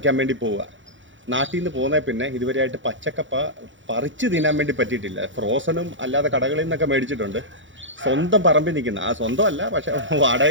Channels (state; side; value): late; left; 0.55 ms